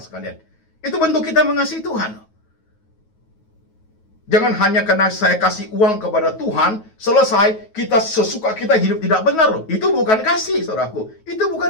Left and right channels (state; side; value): late; right; 9.3 ms